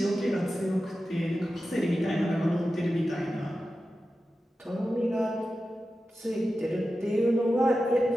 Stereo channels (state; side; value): normal; both; correlation 0.92